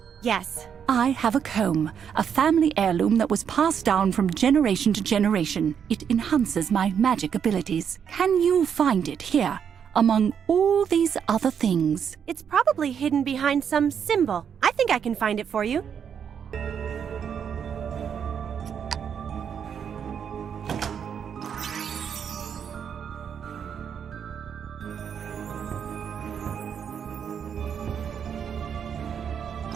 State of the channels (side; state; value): left; quieter; 7.7 dB